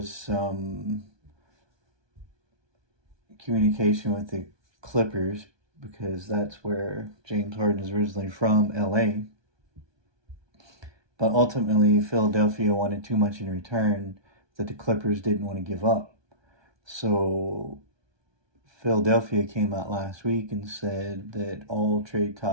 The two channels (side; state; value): left; late; 1.2 ms